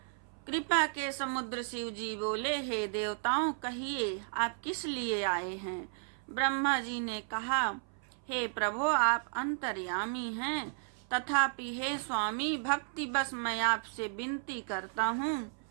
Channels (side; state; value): left; silent; 55 dB below the other